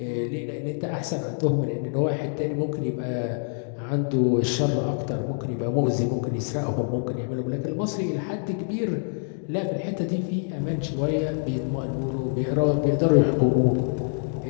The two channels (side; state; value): right; silent; 61 dB below the other